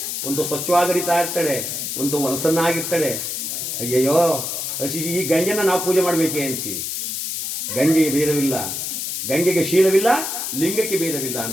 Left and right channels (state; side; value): noise; left; hiss, 3 dB below the sound